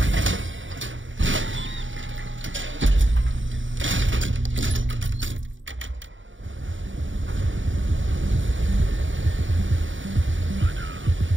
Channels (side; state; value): left; late; 0.56 ms